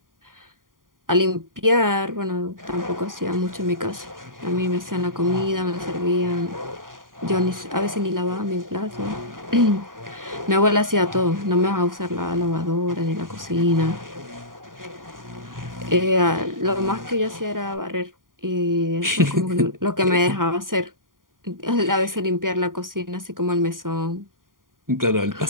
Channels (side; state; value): left; late; 0.90 ms